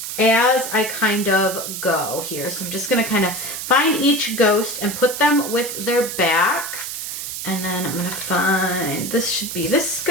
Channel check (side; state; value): right; noise; hiss, 6 dB below the sound